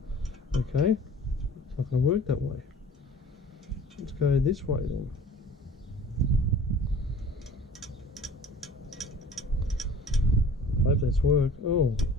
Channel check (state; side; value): normal; both; correlation 0.46